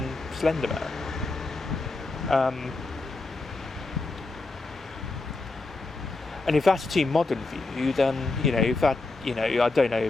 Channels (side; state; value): right; quieter; 3.4 dB